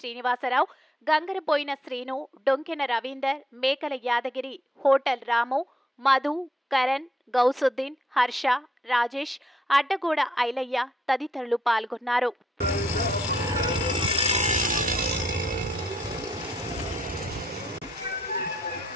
గంగరపోయిన శ్రీను, డొంకెన రవీందర్, మేకల యాదగిరి, హోటల్ రాము, మధు, కరణ్, గౌసుద్దీన్, హర్ష, రాజేష్, అడ్డగూడ ఐలయ్య తదితరులు పాల్గొన్నారు.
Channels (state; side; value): normal; both; correlation 0.73